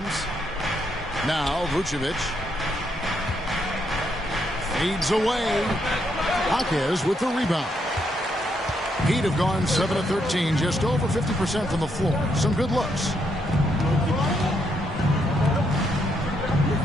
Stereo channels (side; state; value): both; normal; correlation 0.77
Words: Now Vucevic. Fades away. Jaquez with the rebound. Heat have gone 7 of 13, just over 50% from the floor. Some good looks.